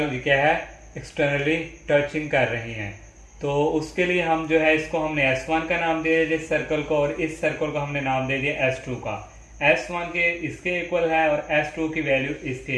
क्या है एक्सटर्नली टचिंग कर रही हैं। तो उसके लिए हम जो है इसको हमने S1 का नाम दे दिया इस सर्कल को, और इस सर्कल को हमने नाम दे दिया S2 का। S1 के इसके इक्वल है और S2 की वैल्यू इसके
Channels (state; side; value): identical; both; correlation 1.00